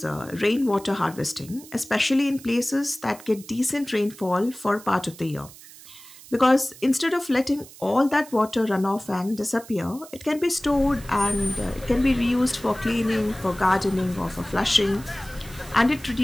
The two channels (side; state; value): right; noise; hiss, 19 dB below the sound